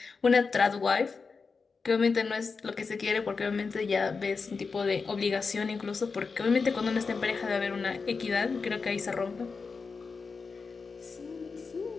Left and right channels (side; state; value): right; quieter; 4.8 dB